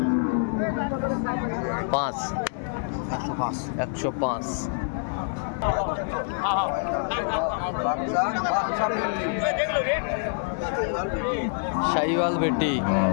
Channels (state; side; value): silent; right; 57 dB below the other